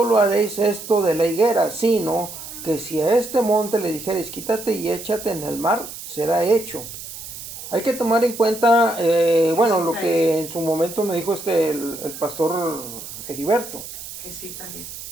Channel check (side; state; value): right; noise; hiss, 11 dB below the sound